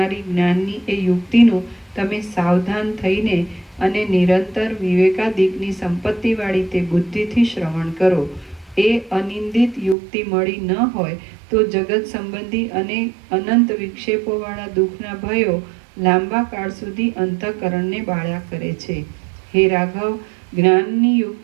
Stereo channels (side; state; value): left; drops out; at 10.0 s